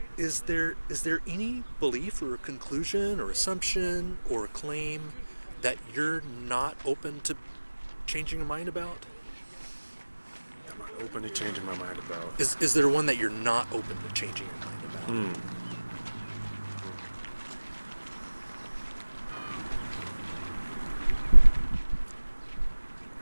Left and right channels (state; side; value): inverted; both; correlation -1.00